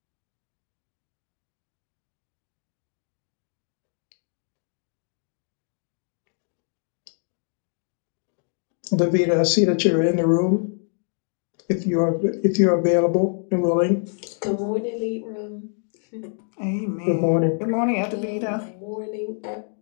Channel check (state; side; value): silent; right; 61 dB below the other